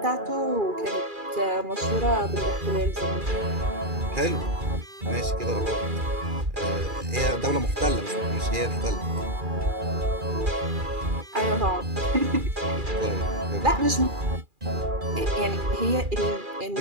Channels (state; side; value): late; left; 2.4 ms